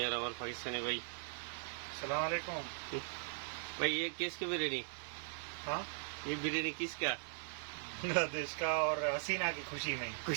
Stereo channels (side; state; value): left; silent; digital silence